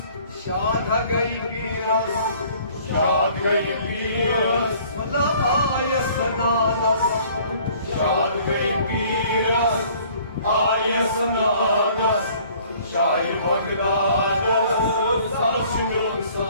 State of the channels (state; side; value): inverted; both; correlation -0.55